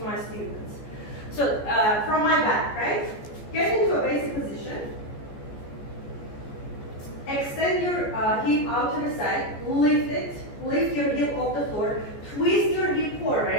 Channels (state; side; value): late; right; 14 ms